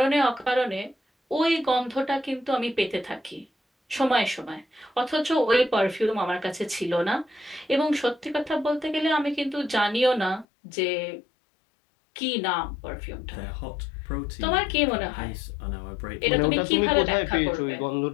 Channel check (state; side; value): drops out; right; at 10.5 s